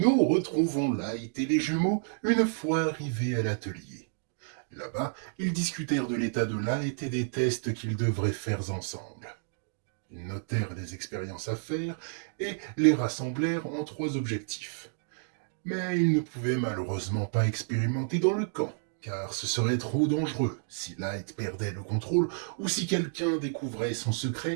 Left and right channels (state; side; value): silent; left; digital silence